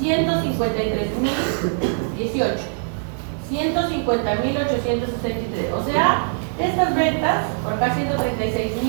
153.018. 150.863. O sea, estas ventas, por acá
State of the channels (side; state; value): left; silent; digital silence